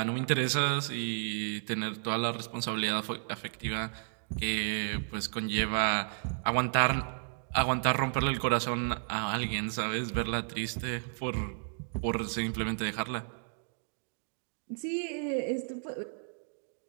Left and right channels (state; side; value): silent; left; digital silence